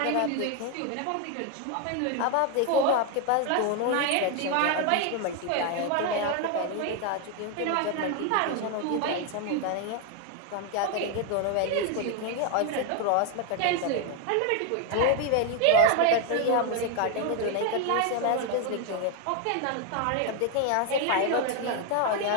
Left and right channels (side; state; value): both; different; correlation 0.01